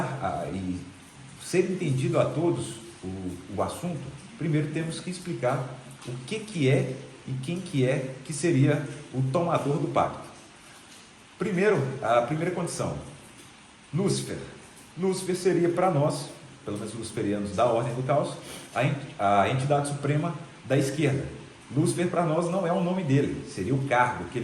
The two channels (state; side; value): identical; both; correlation 1.00